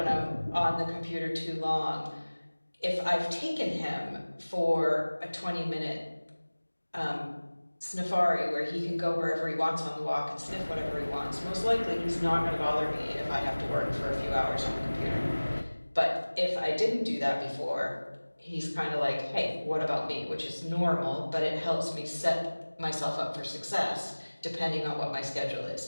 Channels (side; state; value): both; inverted; correlation -1.00